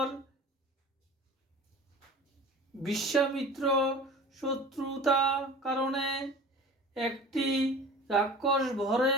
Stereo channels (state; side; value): normal; both; correlation 0.39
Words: বিশ্বামিত্র শত্রুতা কারণে, একটি রাক্ষস